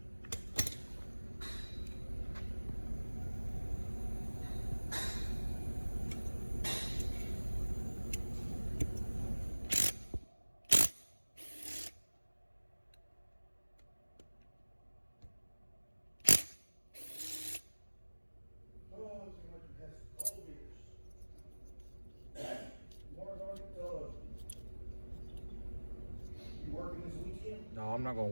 No, I'm not gonna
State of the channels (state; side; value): inverted; both; correlation -1.00